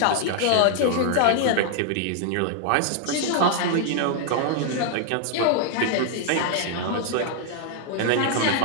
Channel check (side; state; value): both; different; correlation 0.00